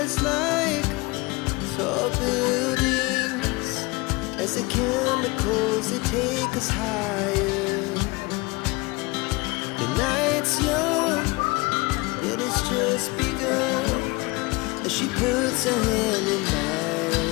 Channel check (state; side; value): quieter; right; 25.1 dB